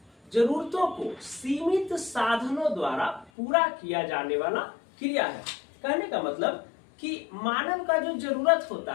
जरूरतों को सीमित साधनों द्वारा पूरा किया जाने वाला क्रिया है। कहने का मतलब कि मानव का जो जरूरत होता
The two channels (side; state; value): right; drops out; at 3.3 s